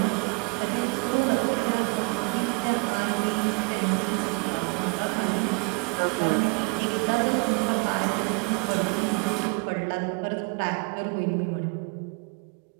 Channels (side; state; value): left; quieter; 31.7 dB